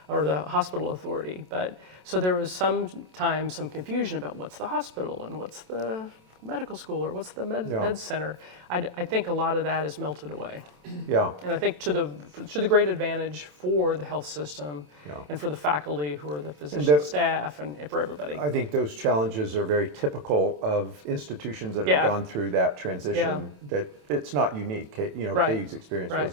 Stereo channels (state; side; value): late; left; 27 ms